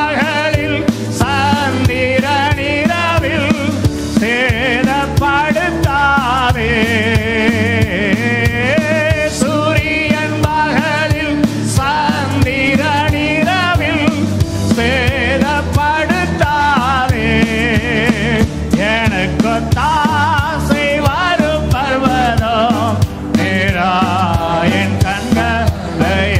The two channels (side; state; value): both; identical; correlation 1.00